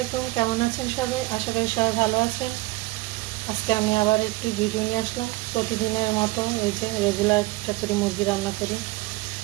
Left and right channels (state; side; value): quieter; left; 20.8 dB